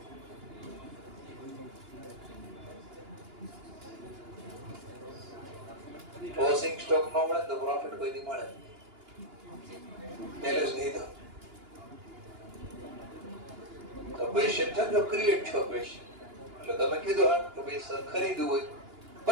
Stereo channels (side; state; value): left; late; 2.9 ms